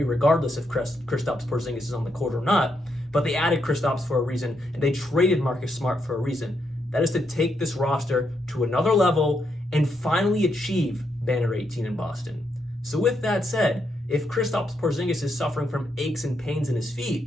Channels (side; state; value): both; normal; correlation 0.79